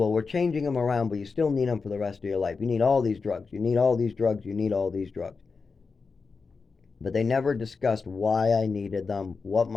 we're changing them around, but you still need them for the rest of your life. You need all these drugs. You need all these drugs. You need all these drugs. But they never discussed why I needed them, what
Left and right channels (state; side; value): quieter; right; 4.7 dB